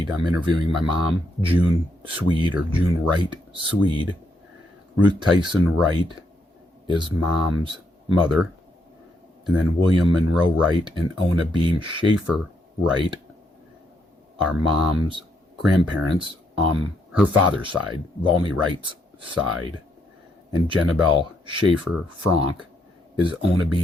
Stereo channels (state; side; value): normal; both; correlation 0.76